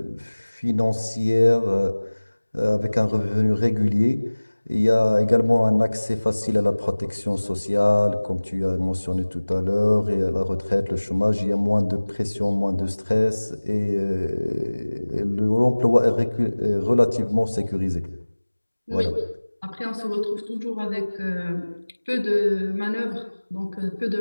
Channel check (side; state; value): both; inverted; correlation -1.00